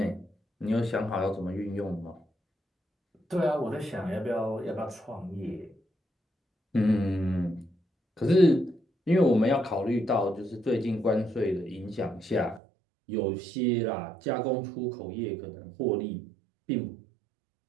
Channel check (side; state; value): left; drops out; at 12.6 s